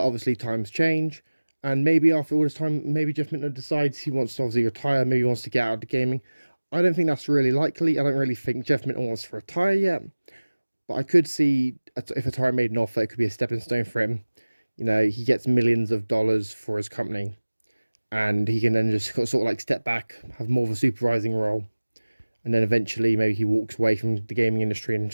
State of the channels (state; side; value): inverted; both; correlation -1.00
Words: obviously times change, and maybe after all this time, maybe Jeff Minter decides he wants to obviously retire, maybe he wants to get out of the gaming. I don't think that's really likely. I don't really think Jeff Minter wants to retire yet, but I could see if Atari made an offer, it could be a stepping stone for him. He gets millions of dollars for his company, and he can then just sort of like step back, have more of a supervising role. And then eventually, maybe he walks away from the gaming industry and